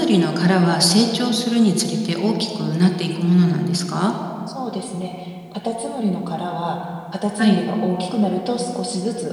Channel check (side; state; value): both; identical; correlation 1.00